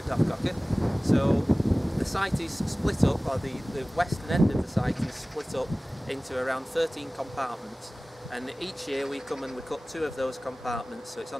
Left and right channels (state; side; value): normal; both; correlation 0.98